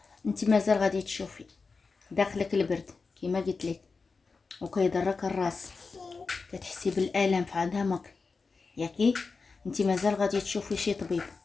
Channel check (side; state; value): right; quieter; 4.5 dB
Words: انت مازال غادي تشوفي داخلك البرد كيما قلت لك، وكيضرك الراس، كتحسي بالالم في عظامك ياكي. انت مازال غادي تشوفي شي طبيب